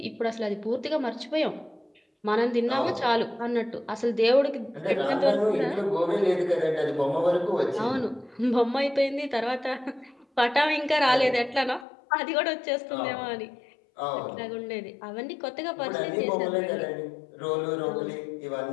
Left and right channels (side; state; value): right; drops out; at 11.9 s